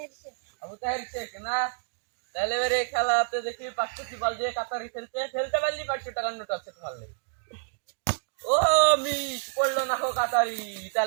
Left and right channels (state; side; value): silent; left; digital silence